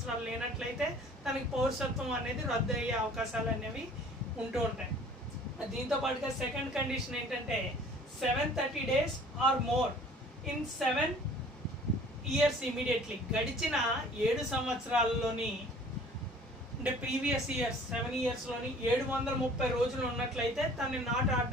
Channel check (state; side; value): normal; both; correlation 0.50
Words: లేనట్లయితే తనకి పౌరసత్వం అనేది రద్దు అయ్యే అవకాశాలు అనేవి ఉంటూ ఉంటాయి. దీంతో పాటుగా సెకండ్ కండిషన్ ఏంటంటే 730 days or more in 7 years immediately, గడిచిన 7 సంవత్సరాల్లోని అంటే ప్రీవియస్ ఇయర్స్ 7 yearsలోని 730 రోజులు ఉన్నట్లయితే తనని నాట్